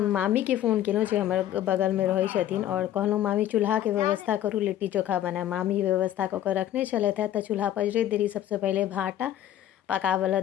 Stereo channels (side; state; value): right; quieter; 11.9 dB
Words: मामी के फ़ोन केलहुँ जे हमर बगलमे रहै छथिन और कहलहुँ मामी चूल्हाके व्यवस्था करू, लिट्टी चोखा बनायब। मामी व्यवस्था कऽ कऽ रखने छलथि हैं। तऽ चूल्हा पजरैत देरी सबसँ पहिले भाटा पकाबऽ